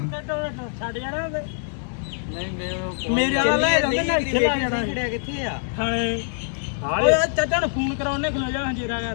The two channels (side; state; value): right; silent; digital silence